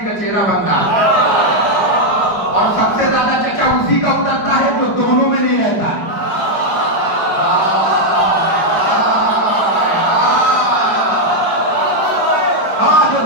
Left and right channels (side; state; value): right; late; 5.1 ms